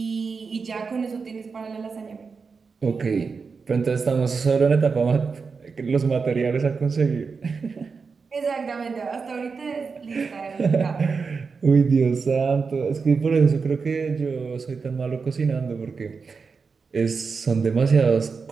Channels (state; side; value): quieter; left; 5.0 dB